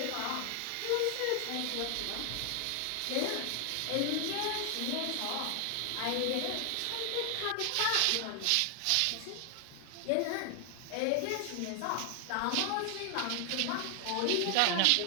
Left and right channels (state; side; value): different; both; correlation 0.00